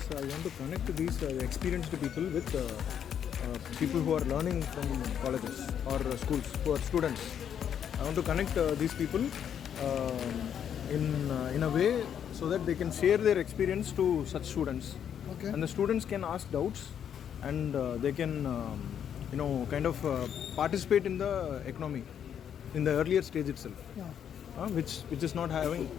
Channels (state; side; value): quieter; right; 8.8 dB